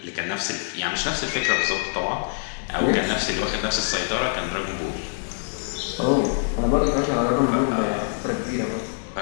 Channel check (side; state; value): right; silent; digital silence